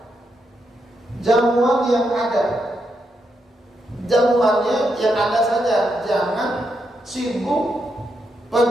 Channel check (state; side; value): normal; both; correlation 0.82